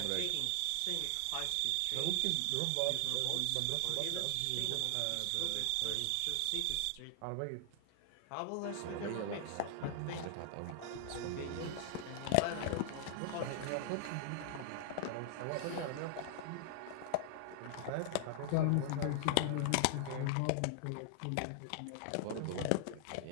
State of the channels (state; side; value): different; both; correlation 0.00